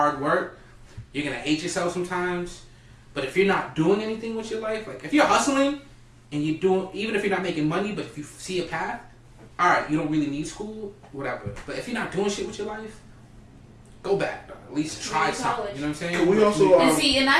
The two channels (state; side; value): identical; both; correlation 1.00